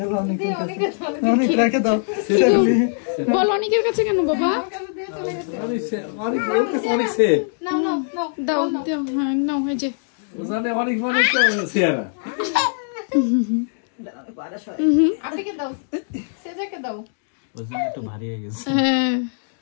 অনেক, অনেক রেখে দাও। বল অনেকের কাছে কেন বাবা? অনেক অনেক সে নাও নাও নাও দাও দাও, হ্যাঁ নাও, এই যে ওখানে অনেক অনেক সেরা। আপনাকে দাও, সেজাকে দাও। ওজন একটু ভারী হয়ে গেছে। হ্যাঁ।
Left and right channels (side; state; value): right; silent; digital silence